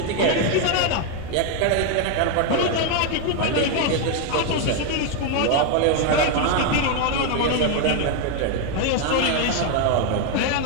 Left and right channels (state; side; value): different; both; correlation 0.01